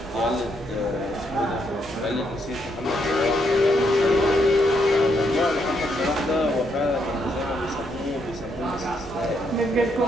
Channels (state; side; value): normal; both; correlation 0.76